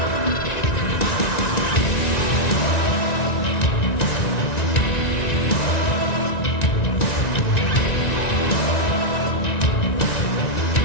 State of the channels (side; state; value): right; late; 1.9 ms